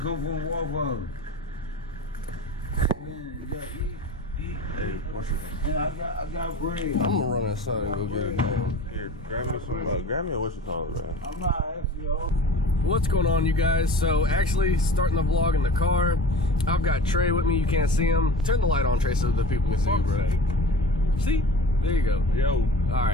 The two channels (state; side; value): normal; both; correlation 0.38